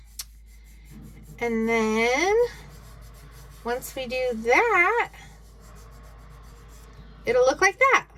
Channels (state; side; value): identical; both; correlation 1.00